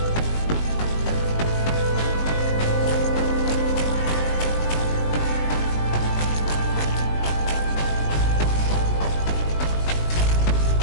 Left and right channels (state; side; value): late; right; 19 ms